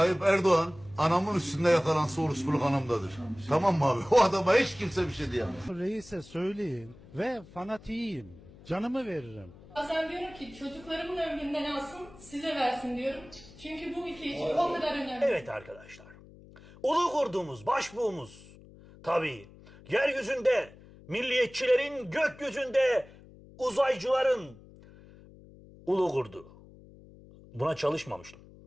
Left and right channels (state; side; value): noise; left; hum, 21 dB below the sound